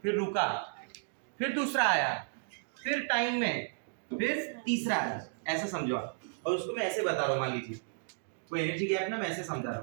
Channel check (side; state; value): left; silent; digital silence